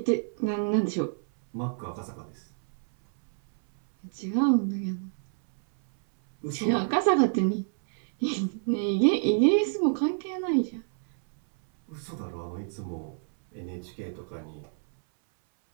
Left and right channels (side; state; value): left; silent; 59 dB below the other